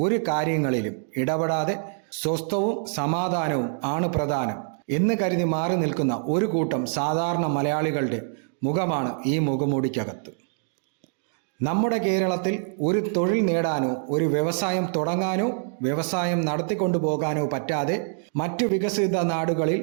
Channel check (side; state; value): left; silent; digital silence